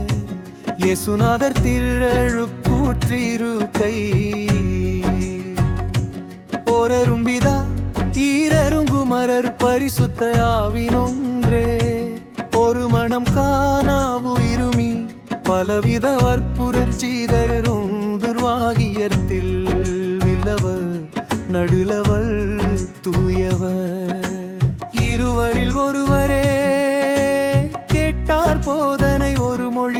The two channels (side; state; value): both; identical; correlation 1.00